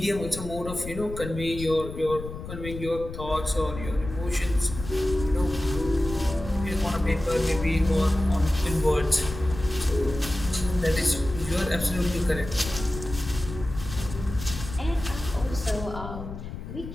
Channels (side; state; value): left; noise; rumble, 10 dB below the sound